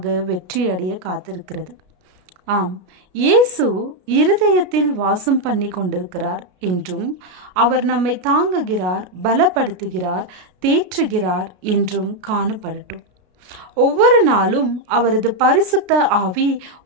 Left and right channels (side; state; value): left; late; 33 ms